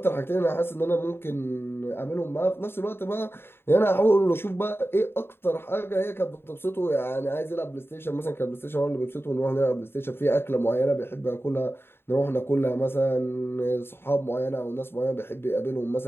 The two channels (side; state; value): right; late; 0.11 ms